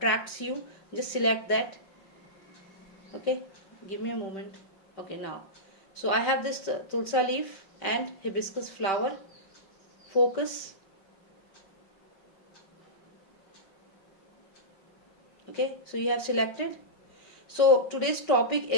you, just select that. Okay, give me a moment. Okay, now, so I have this tulsa leaf and hibiscus flower. Focus. Okay, so you have selected. So today's topic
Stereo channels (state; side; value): late; right; 5.2 ms